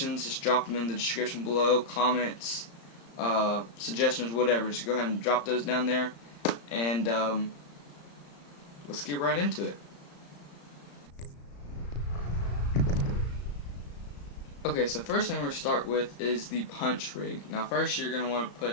just drop them in the description below, comments, suggestions, whatever. Just go ahead and drop those down there, and let's get right into it. Okay, so first thing we're going to start with is the punch rig. Now first you're going to want to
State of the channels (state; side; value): late; right; 35 ms